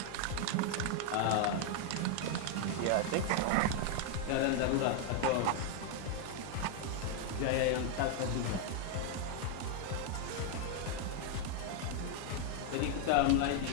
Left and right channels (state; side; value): different; both; correlation 0.00